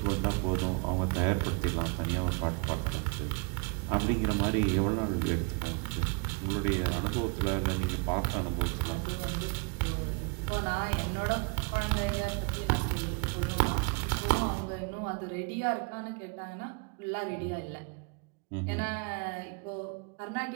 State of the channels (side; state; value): left; quieter; 34.5 dB